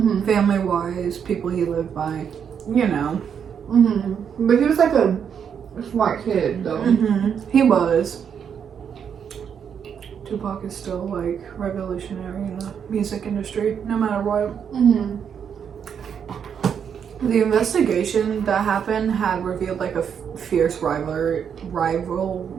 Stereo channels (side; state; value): left; quieter; 7.6 dB